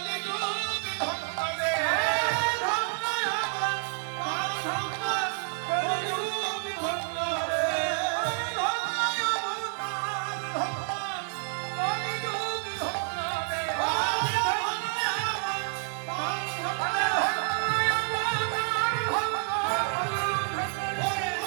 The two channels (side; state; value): left; silent; 59 dB below the other